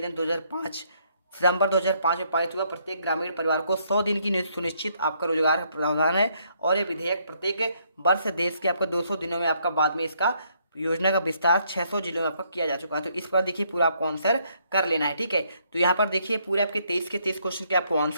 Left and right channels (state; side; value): inverted; both; correlation -0.70